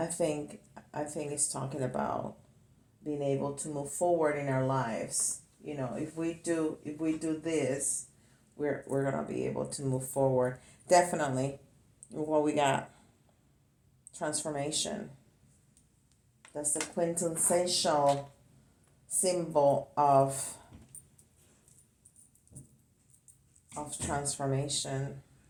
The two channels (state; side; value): identical; both; correlation 1.00